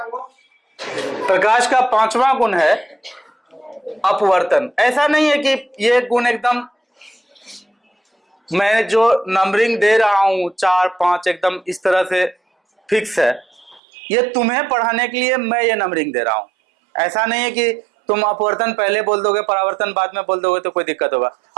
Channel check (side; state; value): left; drops out; at 13.8 s